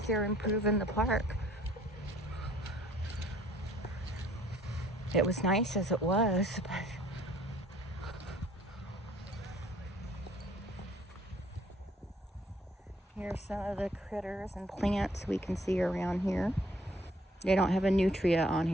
they're improving the park. It was nice as it was, but here's some of the critters and plants we can see around here. They don't have a nutria on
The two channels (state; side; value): normal; both; correlation 0.60